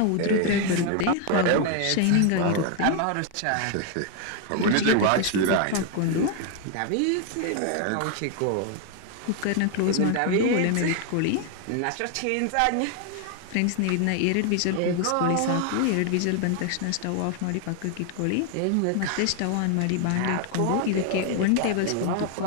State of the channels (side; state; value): both; different; correlation 0.00